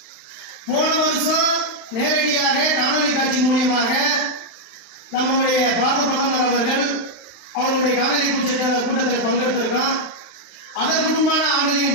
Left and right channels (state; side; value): late; right; 35 ms